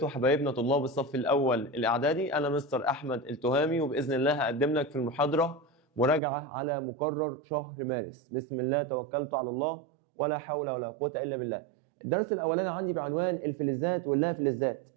حبايبنا طلاب الصف الأول الإعدادي. أنا مستر أحمد التهامي، وبإذن الله هقدم لك في المحاضرة مراجعة على مقرر شهر مارس. بسم الله توكلت على الله ولا حول ولا قوة إلا بالله. الدرس الأولاني عندي بعنوان الفلزات واللا فلزات.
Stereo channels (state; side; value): drops out; left; at 6.2 s